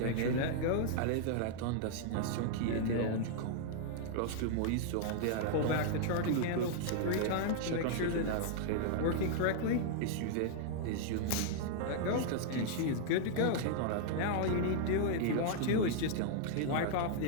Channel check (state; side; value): different; both; correlation -0.01